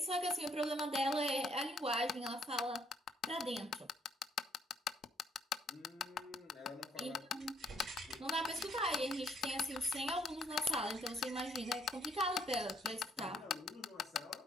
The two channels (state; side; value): normal; both; correlation 0.69